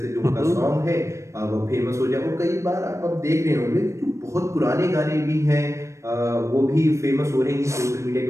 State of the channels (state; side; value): late; left; 0.14 ms